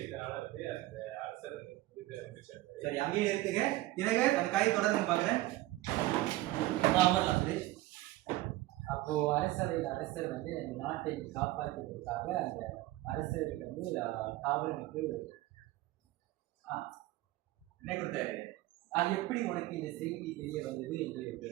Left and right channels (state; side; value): quieter; left; 17.3 dB